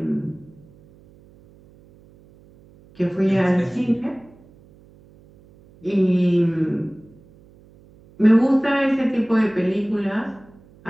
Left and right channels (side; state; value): right; noise; hum, 27 dB below the sound